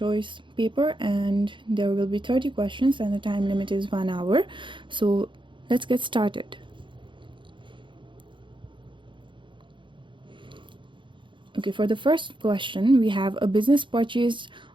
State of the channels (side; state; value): left; late; 0.24 ms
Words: paper and there will be 30 questions and the time limit is 1 hour. So let's get started. Okay, for the first question, we have a business purchased